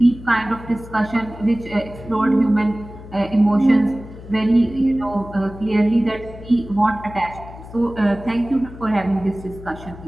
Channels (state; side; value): noise; left; hum, 15 dB below the sound